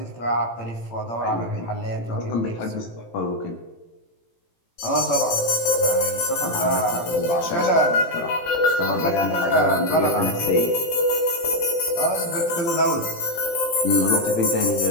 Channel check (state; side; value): late; right; 18 ms